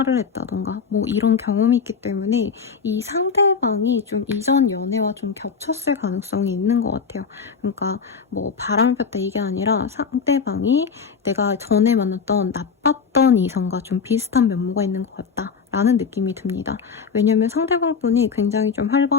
했다던가 뭐 이런 경험이 있기 때문에 이 상대방이 좀 이전 연애와 좀 겹쳤을 가능성이 있는 것 같아요. 그러니까 뭐 바람을 폈다 이게 아니라 상대방이 내가 전에 만났던 나빴던 이성과 좀 비슷한 면모가 있는 것 같다. 라는 느낌이 듭니다. 왜냐면 상대방분이 굉장히 좀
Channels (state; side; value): quieter; right; 5.7 dB